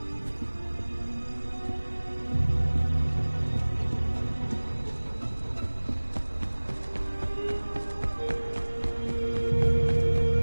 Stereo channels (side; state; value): both; inverted; correlation -1.00